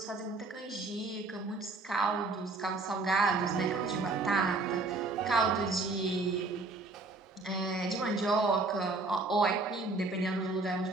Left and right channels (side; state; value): left; quieter; 3.4 dB